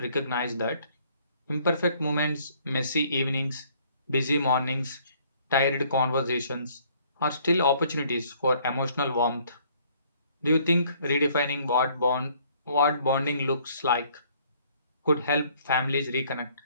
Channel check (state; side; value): inverted; both; correlation -0.61